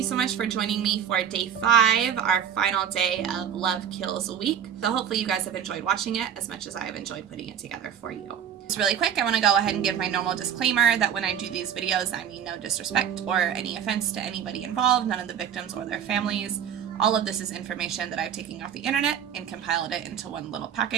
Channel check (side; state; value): left; quieter; 8.7 dB